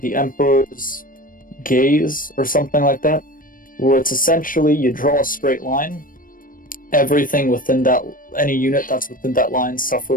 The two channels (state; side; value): late; right; 0.40 ms